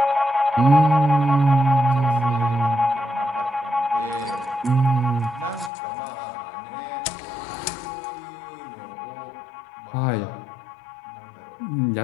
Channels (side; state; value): right; drops out; at 5.7 s